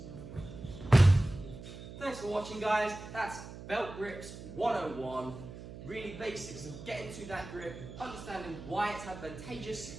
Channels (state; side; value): noise; right; hum, 13 dB below the sound